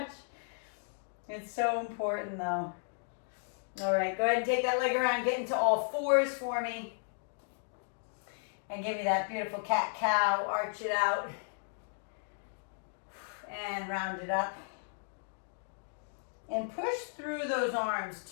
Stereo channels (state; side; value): silent; right; digital silence